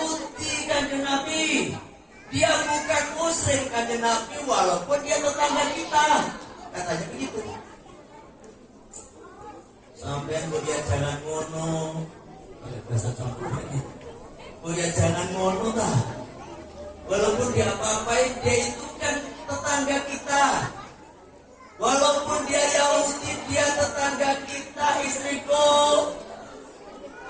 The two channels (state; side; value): identical; both; correlation 1.00